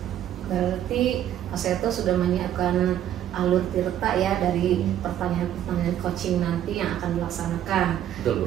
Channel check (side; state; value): left; quieter; 11.2 dB